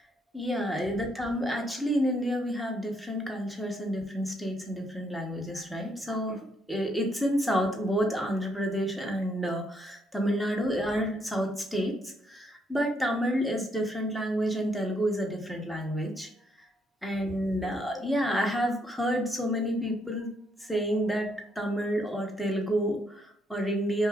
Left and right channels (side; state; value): both; normal; correlation 0.74